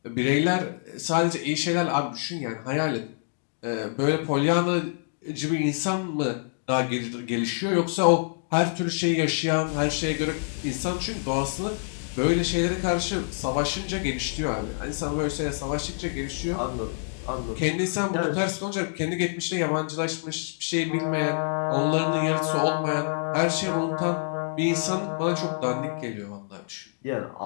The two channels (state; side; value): silent; right; digital silence